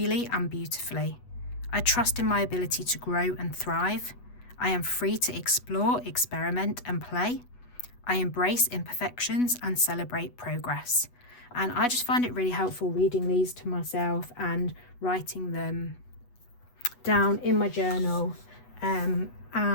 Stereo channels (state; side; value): late; right; 8.1 ms